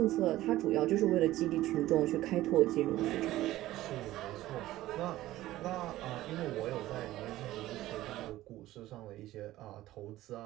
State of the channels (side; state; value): left; quieter; 15.6 dB